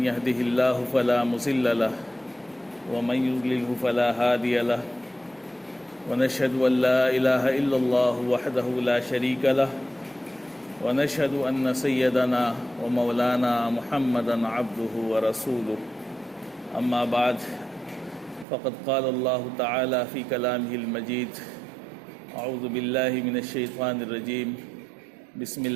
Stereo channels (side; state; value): left; drops out; at 18.4 s